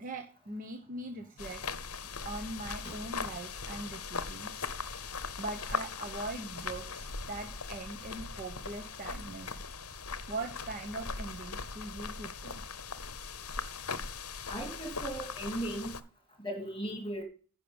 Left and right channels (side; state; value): both; normal; correlation 0.24